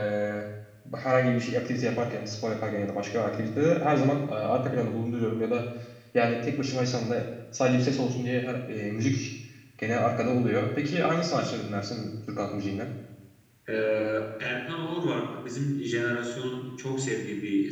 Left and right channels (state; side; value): identical; both; correlation 1.00